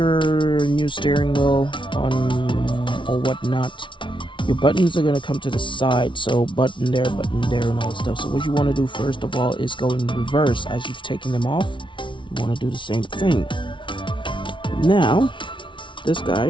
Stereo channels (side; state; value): right; late; 0.24 ms